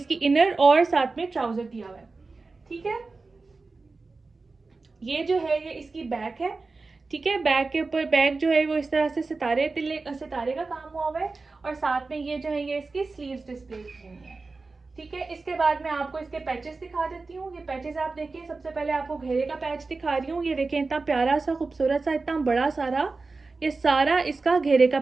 इनर और साथ में ट्राउजर दिया हुआ है। ठीक है, ये जो है ये इसकी बैक है। ठीक है, बैक के ऊपर बैक जो है वो इस तरह से सितारे का काम हुआ हुआ है और साथ में ये जो है ये इसकी स्लीव्स डिस्प्ले की हुई है। ठीक है, इसके बाद मैं आपको इसके पैचेस दिखा देती हूँ। ये पैचेस आप देखिए, सबसे पहले आपको घेरे का पैच दिखा रही हूँ। ये देखें, इतना प्यारा सा खूबसूरत सा इतना बड़ा सारा ये सारा इसका घेरे का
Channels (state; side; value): quieter; left; 3.8 dB